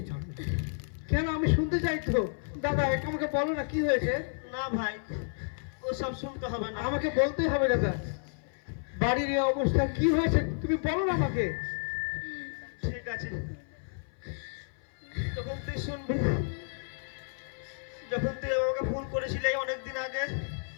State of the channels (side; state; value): right; silent; 57 dB below the other